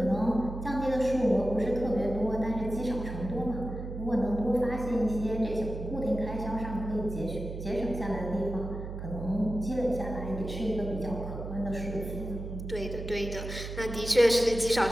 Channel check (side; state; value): right; noise; hum, 7 dB below the sound